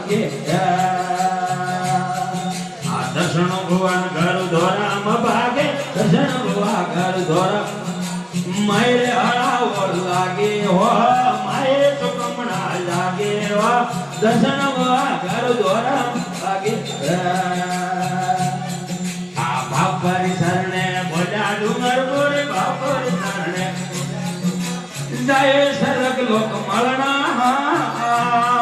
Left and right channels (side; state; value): both; identical; correlation 1.00